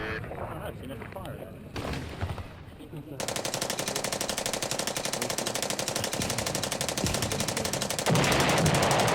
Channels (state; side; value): identical; both; correlation 1.00